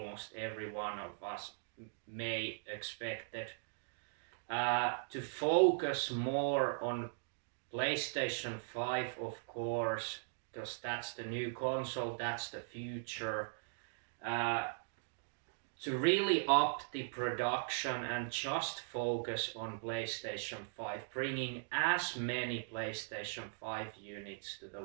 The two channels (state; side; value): silent; left; digital silence